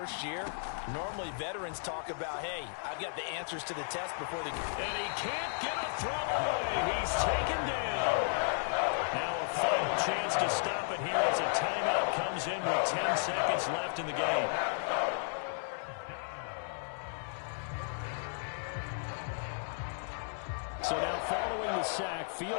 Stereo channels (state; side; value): silent; right; digital silence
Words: year. Normally, veterans talk about, hey, I've got the answers to the test before they... And he can't get a throw away. He's taken down. Now a final chance to stop it here as a timeout comes in with 10 seconds left in the game. So now following the sack,